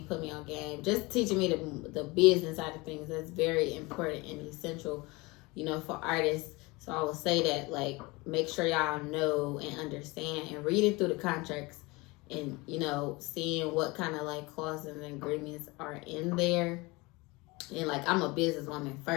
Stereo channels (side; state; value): right; quieter; 24.1 dB